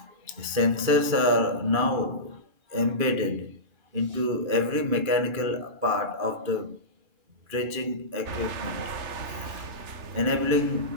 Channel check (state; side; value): late; left; 2.5 ms